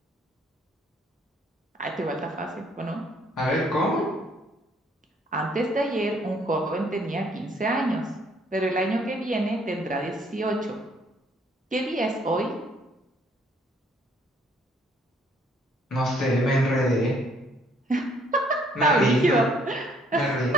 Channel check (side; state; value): both; normal; correlation 0.64